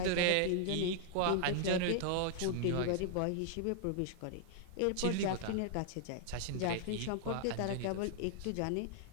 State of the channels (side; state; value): both; different; correlation -0.01